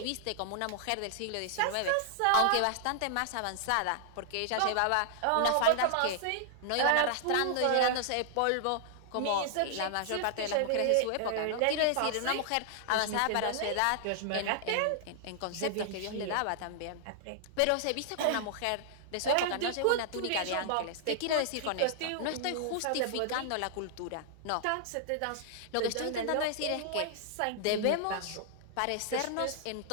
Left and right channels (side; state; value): both; different; correlation -0.01